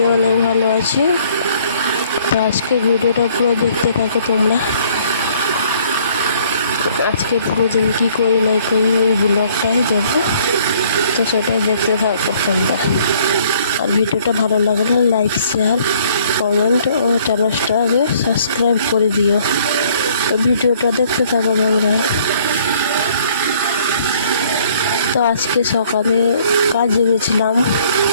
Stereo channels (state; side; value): inverted; both; correlation -0.60